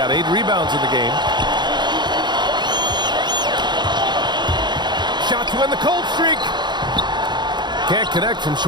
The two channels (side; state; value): left; late; 0.21 ms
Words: 8 rebounds in the game. Shot to end the cold streak. Can't connect from